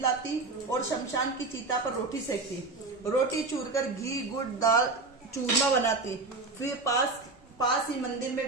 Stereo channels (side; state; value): left; quieter; 3.6 dB